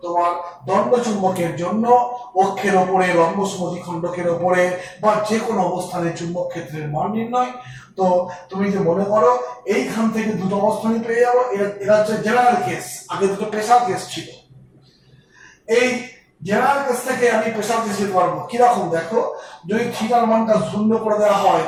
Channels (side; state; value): both; identical; correlation 1.00